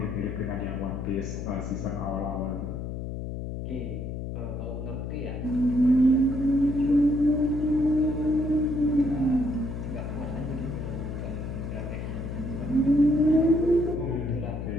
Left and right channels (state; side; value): noise; left; hum, 6 dB below the sound